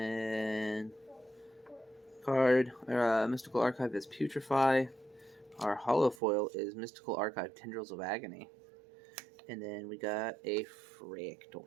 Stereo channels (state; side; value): drops out; left; at 6.2 s